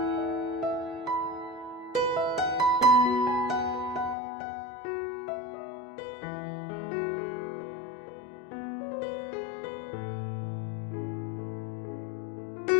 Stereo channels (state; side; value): drops out; right; at 4.2 s